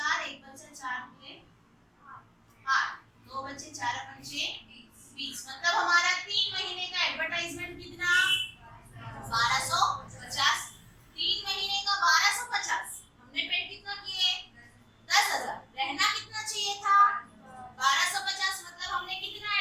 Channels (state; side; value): identical; both; correlation 1.00